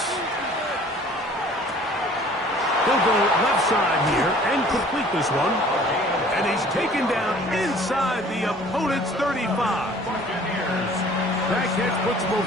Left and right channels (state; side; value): normal; both; correlation 0.51